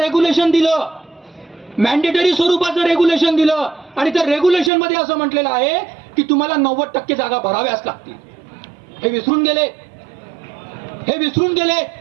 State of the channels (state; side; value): drops out; left; at 4.7 s